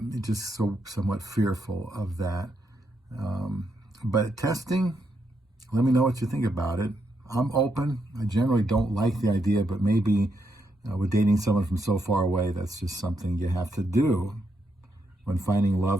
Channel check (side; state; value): both; normal; correlation 0.80